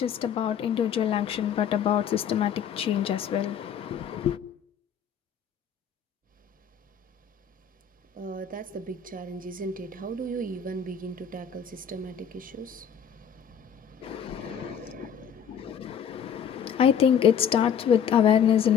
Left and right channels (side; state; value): right; quieter; 7.9 dB